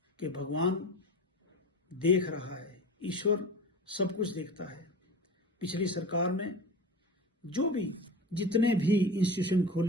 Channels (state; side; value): normal; both; correlation 0.32